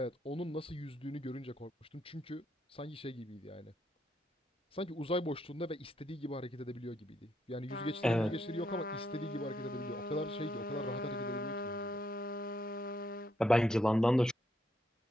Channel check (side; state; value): both; normal; correlation 0.76